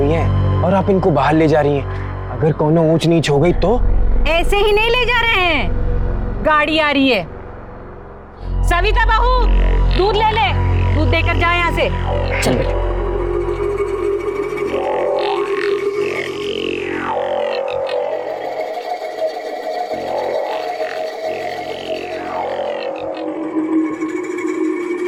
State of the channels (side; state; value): both; identical; correlation 1.00